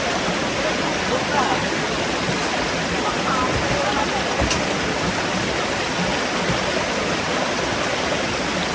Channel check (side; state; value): both; identical; correlation 1.00